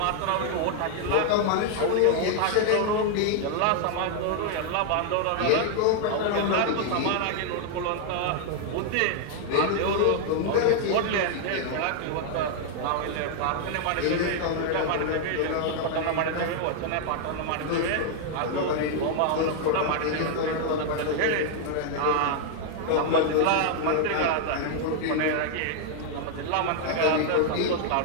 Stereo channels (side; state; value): both; different; correlation 0.00